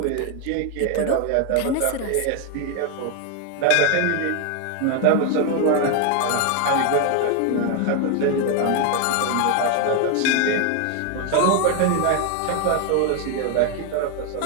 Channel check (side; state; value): both; different; correlation 0.01